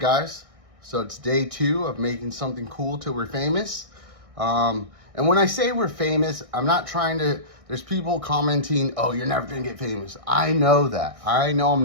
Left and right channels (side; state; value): left; late; 1.6 ms